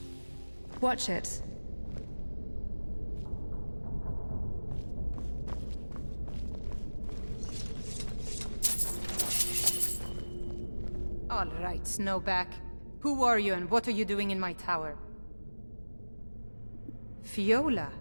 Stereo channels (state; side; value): inverted; both; correlation -1.00